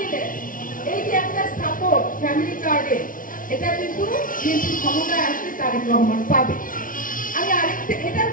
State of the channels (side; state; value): right; late; 0.39 ms